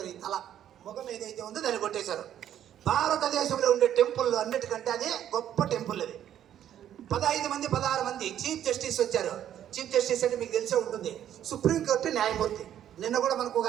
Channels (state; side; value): quieter; left; 10.7 dB